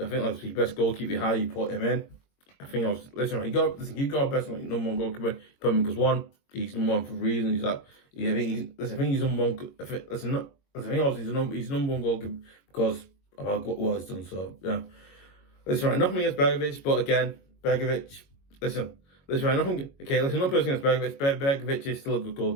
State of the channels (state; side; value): late; right; 22 ms